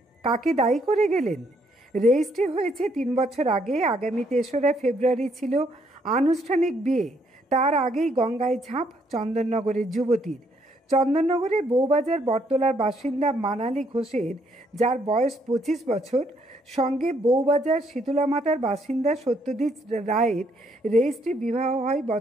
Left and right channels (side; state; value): both; normal; correlation 0.70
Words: কাকে দায়ী করে গেলেন? রেজিস্ট্রি হয়েছে 3 বছর আগে। আগামী 3রা ফেব্রুয়ারি ছিল আনুষ্ঠানিক বিয়ে। তার আগেই গঙ্গায় ঝাঁপ চন্দননগরের যুবতীর। চন্দননগরের বউবাজার বটতলার বাসিন্দা মানালি ঘোষের, যার বয়স 25 বছর, সঙ্গে বউবাজার শীতলামাতার বাসিন্দা সত্যজিৎ রায়ের রেজিস্ট্রি বিবাহ হয়